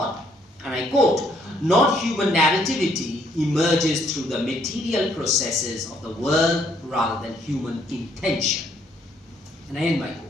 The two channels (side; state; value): both; normal; correlation 0.68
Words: and I quote, not human narrativity emerges through the material processes of the world rather than human intention. And I end my